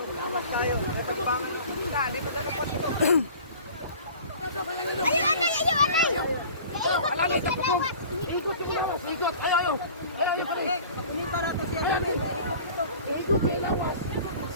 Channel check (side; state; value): both; inverted; correlation -0.44